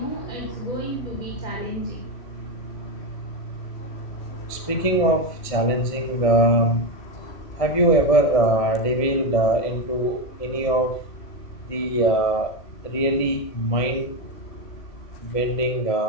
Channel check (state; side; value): late; right; 1.7 ms